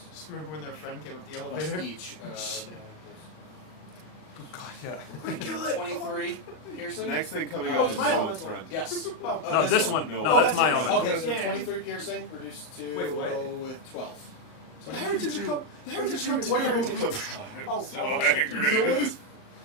Just remember when their friend came up the plus elevator? each. Oh, God, yeah. 23 piercing. The next thing coming Oh, up it's is my Salt's elemental. friend. Yes. Oh. No, this one. No. No, Oh, that's that's my yours. elemental. Okay, so Yeah. 23 piercing reduced to Wait, what? go with 12. So The heretics are coming. The heretics are coming. What heretics? I'm Oh, so oh, angry.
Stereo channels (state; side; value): late; right; 39 ms